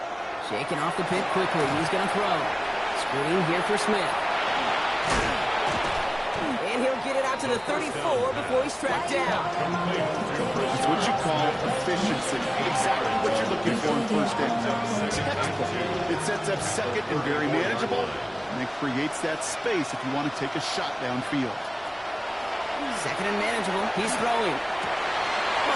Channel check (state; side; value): identical; both; correlation 1.00